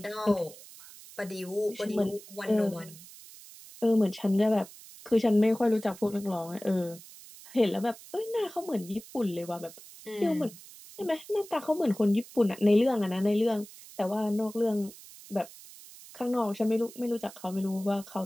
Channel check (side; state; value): right; noise; hiss, 18 dB below the sound